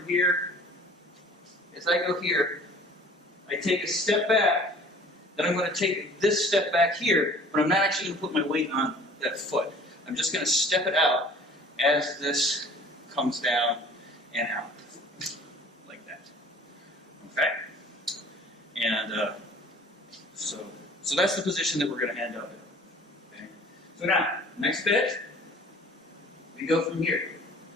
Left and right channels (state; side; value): normal; both; correlation 0.49